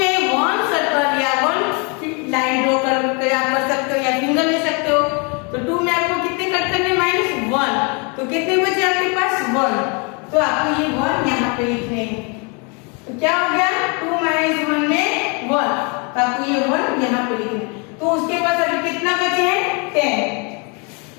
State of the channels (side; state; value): right; quieter; 33.4 dB